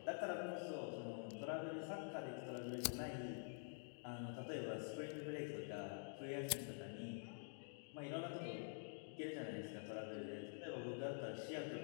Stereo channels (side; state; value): right; silent; digital silence